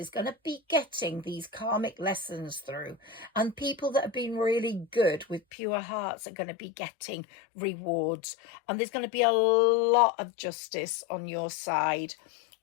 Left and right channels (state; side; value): drops out; right; at 5.4 s